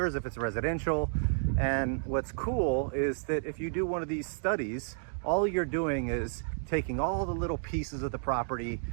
if it's residential. And what's cool is that if you do one of these studies, all you're doing is taking all the little pieces of the property,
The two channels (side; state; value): left; silent; digital silence